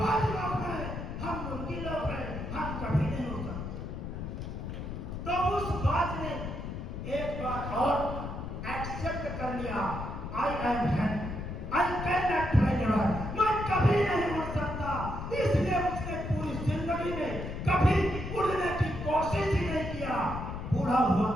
लोग हैं, हम मुर्गी लोग हैं, हम कभी नहीं उड़ सकते। तो उस बाज ने एक बार और एक्सेप्ट कर लिया, I am hand, I can not fly ever, मैं कभी नहीं उड़ सकता। इसलिए उसने पूरी जिंदगी में कभी उड़ने की कोशिश ही नहीं किया, बूढ़ा हुआ।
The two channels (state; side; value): noise; left; rumble, 6 dB below the sound